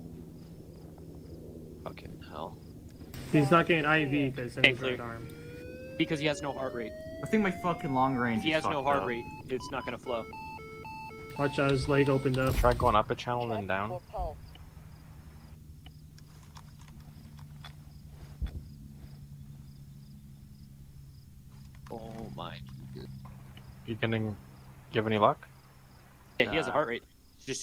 Fucking hell. He's not getting IV because in his clear. right arm. Because he has no heart rate. I think my fucking long range. If he is has no fucked heart up. rate, it's not gonna flow. Watch out, his leg opened up. Try going up a channel and then down. Oh my. You getting? Give any luck? Yeah, he has a heart rate. It's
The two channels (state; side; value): identical; both; correlation 1.00